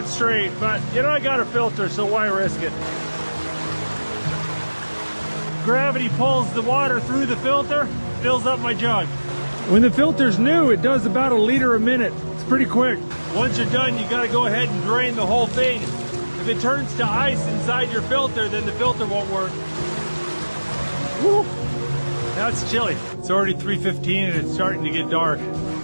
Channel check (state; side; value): inverted; both; correlation -1.00